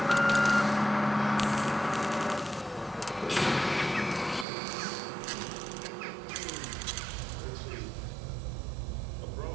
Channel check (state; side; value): drops out; left; at 4.5 s